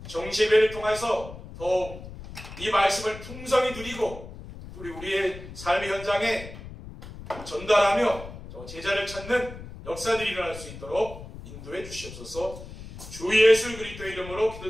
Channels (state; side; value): noise; left; rumble, 13 dB below the sound